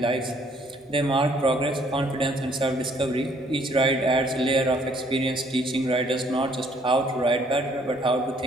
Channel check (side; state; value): both; normal; correlation 0.63